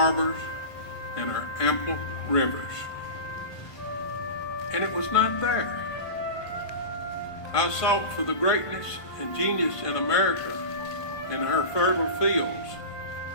and her ample rivers, and it was not there. I sought for the greatness and genius in America in her fertile fields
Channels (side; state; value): right; late; 1.5 ms